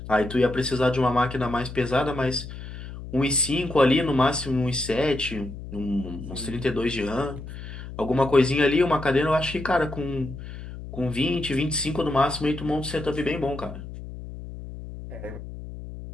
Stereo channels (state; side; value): noise; left; hum, 11 dB below the sound